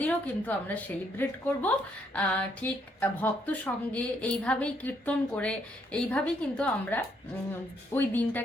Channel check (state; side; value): normal; both; correlation 0.72